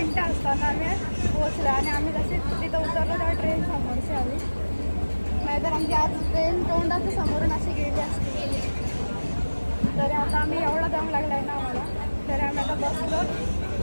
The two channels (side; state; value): both; inverted; correlation -1.00